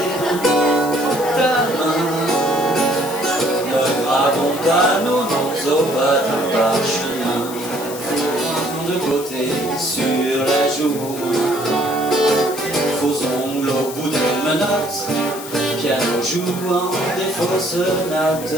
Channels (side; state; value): left; noise; hiss, 12 dB below the sound